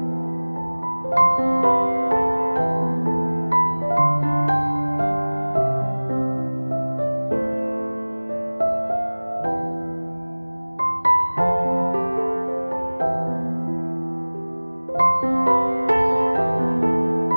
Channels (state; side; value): inverted; both; correlation -1.00